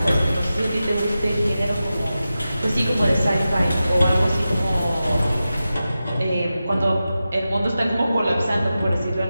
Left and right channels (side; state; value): both; inverted; correlation -0.93